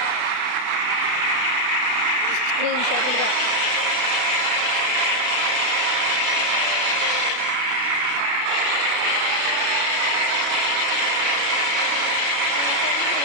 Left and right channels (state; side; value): late; left; 32 ms